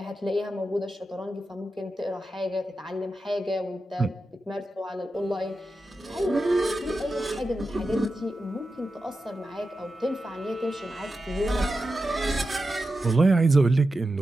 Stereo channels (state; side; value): normal; both; correlation 0.91